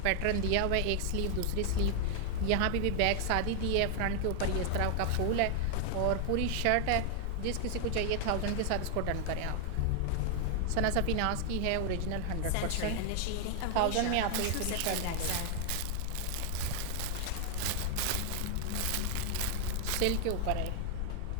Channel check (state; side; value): different; both; correlation 0.00